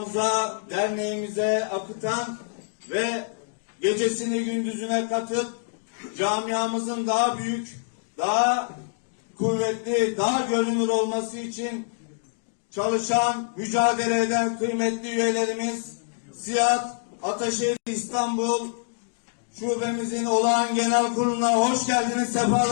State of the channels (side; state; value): right; silent; digital silence